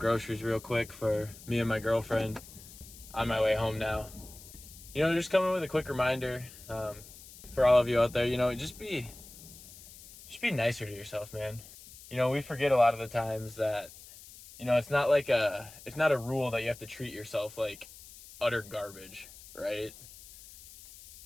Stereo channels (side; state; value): left; noise; hiss, 18 dB below the sound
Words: real quick for me and my girlfriend. On my way home now. Just coming with a quick reminder for all of you out there. Just be nicer to yourself, man. We forget a lot of the times that it's not a rule that you have to treat yourself like utter garbage, right?